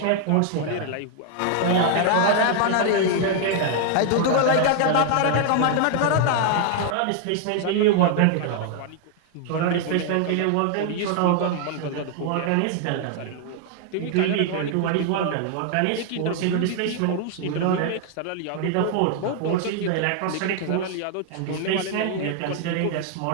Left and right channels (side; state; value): both; different; correlation 0.00